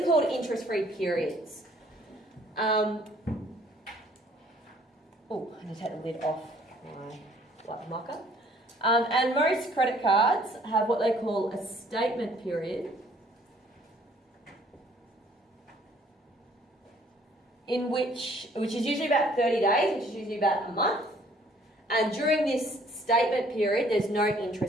are called interest-free periods. Oh, I need to take the lid off my black marker. And most credit cards have what they call a statement period, which is usually about 30 days, which is usually about a month. And during this statement period, there's no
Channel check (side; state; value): both; normal; correlation 0.59